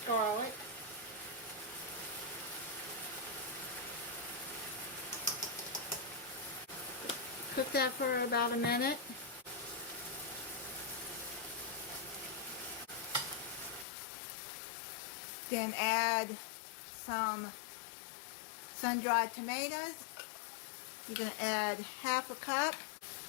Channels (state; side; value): drops out; right; at 13.9 s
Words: garlic, cook that for about a minute. Then add some sun-dried tomatoes. You're going to add half a cup.